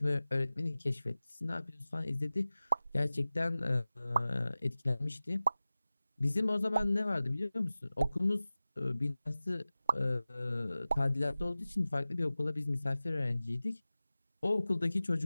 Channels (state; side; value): inverted; both; correlation -0.97